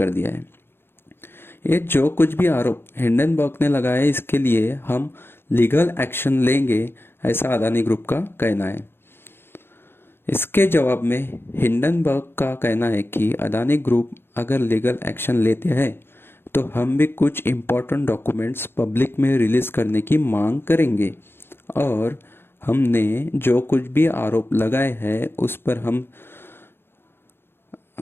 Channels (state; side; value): late; right; 0.11 ms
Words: दिया है। ये जो कुछ भी आरोप हिंडनबर्ग ने लगाए, इसके लिए हम लीगल एक्शन लेंगे, ऐसा अदानी ग्रुप का कहना है। इसके जवाब में हिंडनबर्ग का कहना है कि अदानी ग्रुप अगर लीगल एक्शन लेते हैं तो हम भी कुछ इम्पोर्टेंट डॉक्यूमेंट्स पब्लिक में रिलीज करने की मांग करेंगे और हमने जो कुछ भी आरोप लगाए हैं उस पर हम